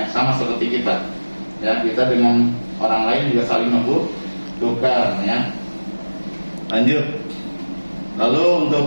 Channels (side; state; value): both; inverted; correlation -1.00